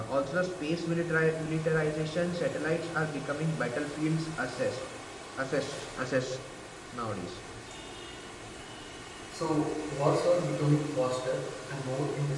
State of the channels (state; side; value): identical; both; correlation 1.00